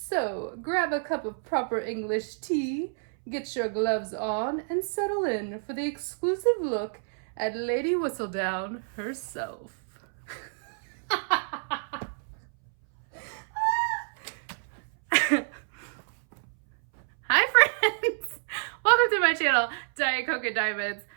grab a cup of proper English tea, get your gloves on, and settle in for the exclusive look at Lady Whistledown herself. Hi friends! Welcome to my channel, Diet Coke and Diamonds.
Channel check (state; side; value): silent; left; 59 dB below the other